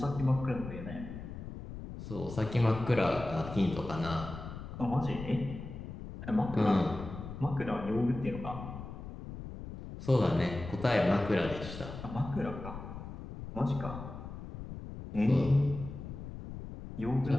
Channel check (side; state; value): left; noise; rumble, 10 dB below the sound